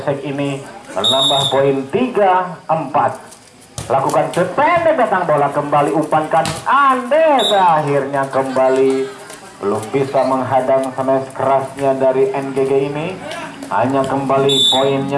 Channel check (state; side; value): identical; both; correlation 1.00